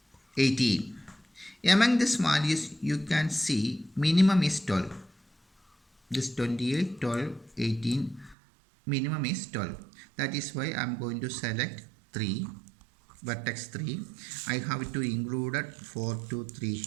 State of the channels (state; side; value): drops out; left; at 8.3 s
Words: 18. Among these values you can see minimum is 12. This 28, 12, 18 minimum is 12. That is why I am going to select 3, vertex 3. I have to include 4 to 3